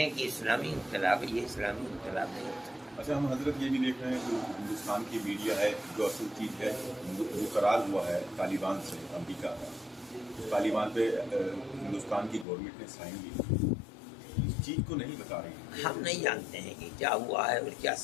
کہ اسلامی انقلاب ہے. یہ اسلامی انقلاب نہیں ہوتا. اچھا، ہم حضرت یہ بھی دیکھ رہے ہیں کہ ہندوستان کی میڈیا ہے جو اصل چیز ہے وہ قرار ہوا ہے طالبان سے، امریکہ کا. طالبان پہ ہندوستان کی گورنمنٹ نے سائن کی، اس چیز کو نہیں بتا رہی. ہم نہیں جانتے ہیں کہ کیا ہوا ہے اور کیا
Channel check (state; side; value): drops out; right; at 12.5 s